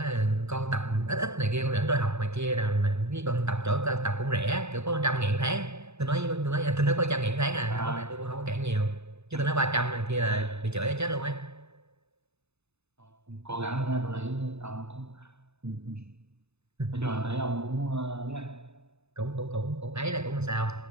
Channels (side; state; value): left; late; 0.80 ms